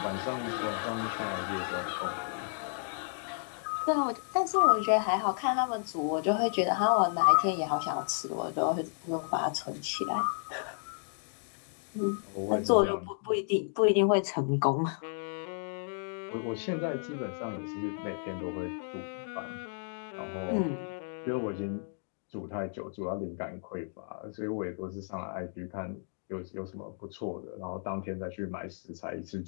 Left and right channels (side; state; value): right; silent; digital silence